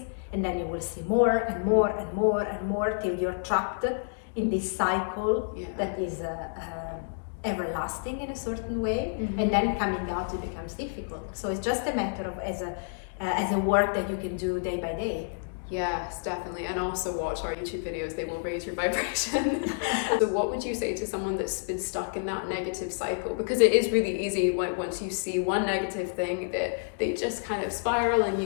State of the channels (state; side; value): silent; right; digital silence